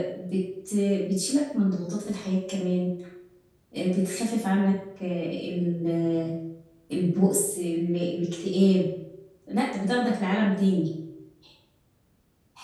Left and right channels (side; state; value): both; identical; correlation 1.00